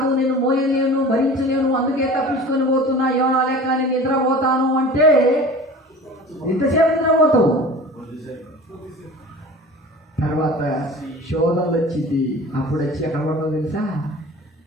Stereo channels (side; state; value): both; normal; correlation 0.40